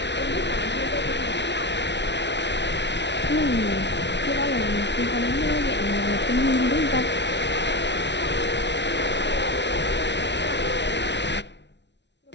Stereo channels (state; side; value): late; right; 0.51 ms